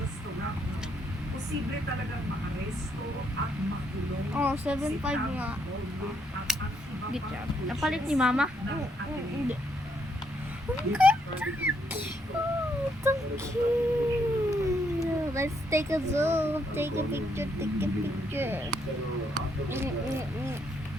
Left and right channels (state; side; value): normal; both; correlation 0.74